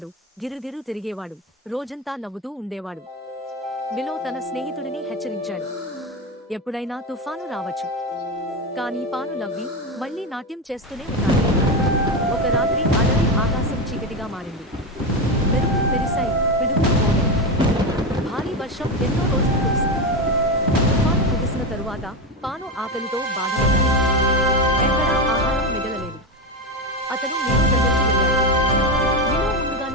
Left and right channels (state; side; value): normal; both; correlation 0.15